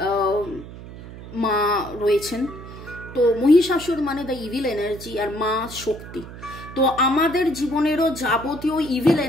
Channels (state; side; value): noise; right; hum, 14 dB below the sound